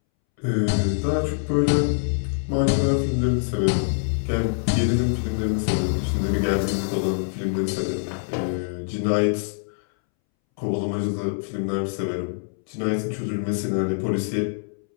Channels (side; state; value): right; silent; 62 dB below the other